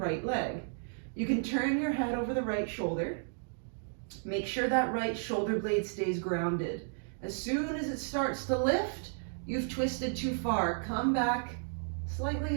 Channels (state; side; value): silent; left; digital silence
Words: leg. You can turn your head over the right shoulder. Make sure that right shoulder blade stays grounded. As soon as it starts to lift, you've twisted too far. Come back